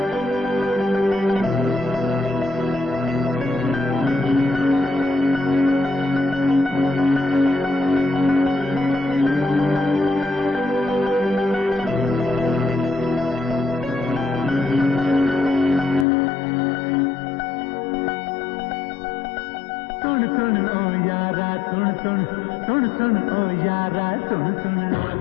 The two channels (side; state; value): right; drops out; at 16.1 s